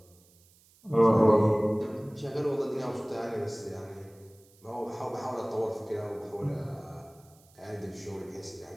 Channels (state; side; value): noise; right; hiss, 29 dB below the sound